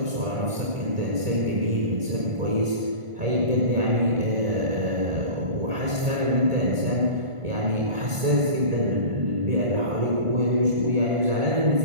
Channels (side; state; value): left; late; 1.5 ms